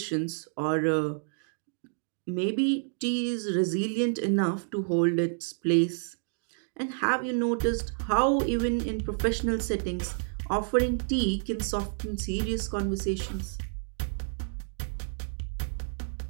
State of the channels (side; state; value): left; silent; digital silence